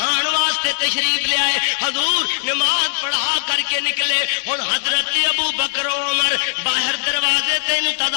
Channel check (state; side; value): silent; right; digital silence